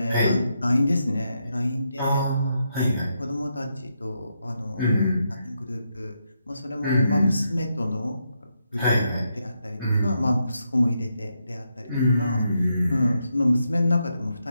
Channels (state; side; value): inverted; both; correlation -0.82